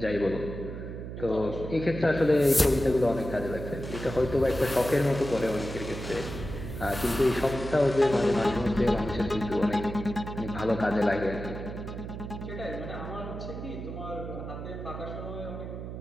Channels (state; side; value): noise; right; hum, 8 dB below the sound